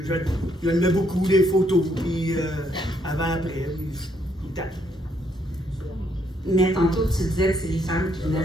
je le mets beaucoup, des photos, puis avant-après, puis tout le temps. Mais tantôt, tu disais que c'est les femmes qui venaient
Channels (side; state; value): both; normal; correlation 0.72